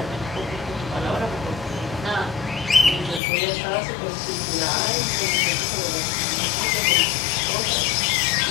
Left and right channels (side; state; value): right; drops out; at 3.2 s